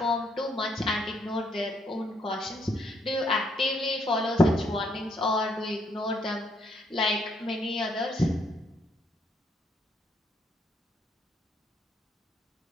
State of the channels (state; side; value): normal; both; correlation 0.72